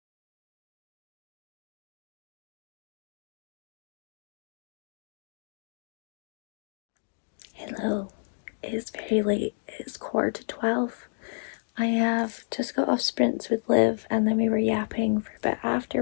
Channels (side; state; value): right; silent; digital silence